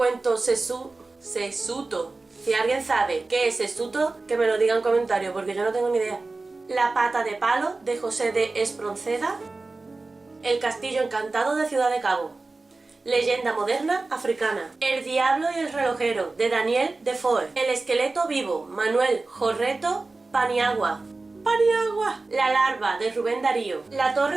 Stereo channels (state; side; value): quieter; left; 3.5 dB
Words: Sesuto. Si alguien sabe qué es Sesuto, que me lo diga en comentarios, porque yo no tengo ni idea. La pata de palo, de José de Espronceda. El castillo encantado, de Ciudad de Cabo. Leyenda moderna africana. El diablo y el relojero, de Daniel Defoe. El esqueleto vivo, Manuel Jorreto Paniagua. La larva, de Rubén Darío. La